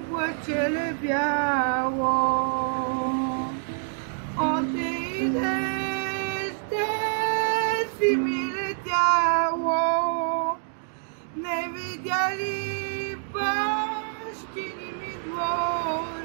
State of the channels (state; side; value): silent; left; digital silence